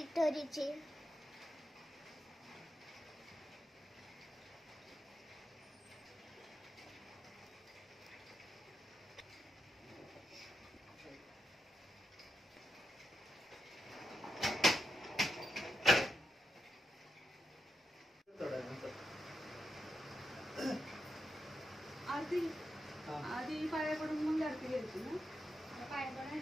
आधी पाया पडून मग आरती घ्यायची ना. पाया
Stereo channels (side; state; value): both; normal; correlation 0.85